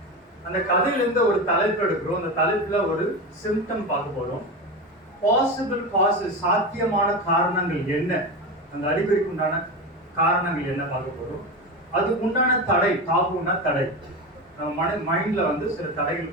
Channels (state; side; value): normal; both; correlation 0.21